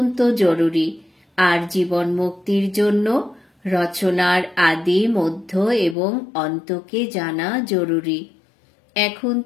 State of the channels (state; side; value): drops out; right; at 6.0 s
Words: জরুরি, আর জীবন মুক্তির জন্য রচনার আদি, মধ্য এবং অন্তকে জানা জরুরি। এখন